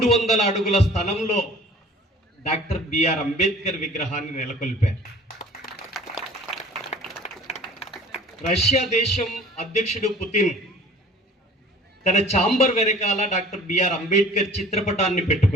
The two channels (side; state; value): both; normal; correlation 0.47